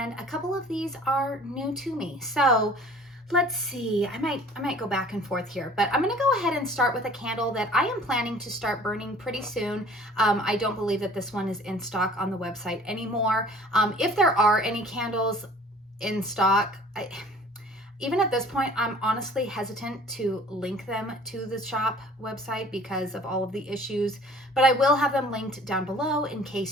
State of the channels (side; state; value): both; normal; correlation 0.50